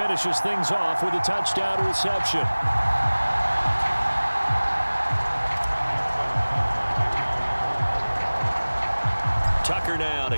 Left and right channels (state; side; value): inverted; both; correlation -1.00